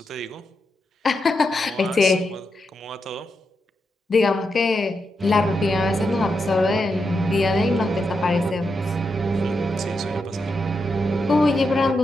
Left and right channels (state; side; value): normal; both; correlation 0.85